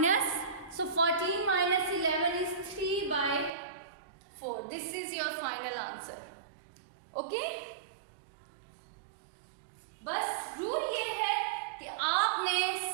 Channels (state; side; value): drops out; left; at 3.5 s